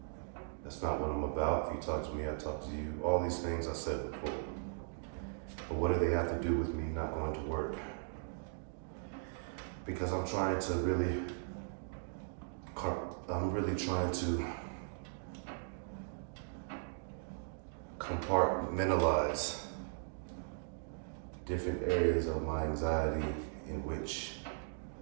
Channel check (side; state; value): left; silent; digital silence